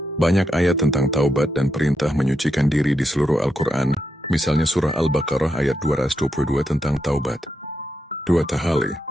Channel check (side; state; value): both; normal; correlation 0.84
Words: banyak ayat tentang taubat dan perintah menyucikan diri di seluruh Al-Quran. Misalnya surah Al-Baqarah ayat 222 tentang taubat. 2. Tahalli,